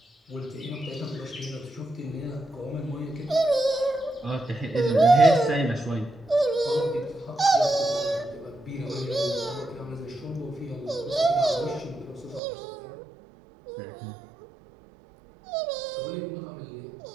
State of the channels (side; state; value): left; drops out; at 12.4 s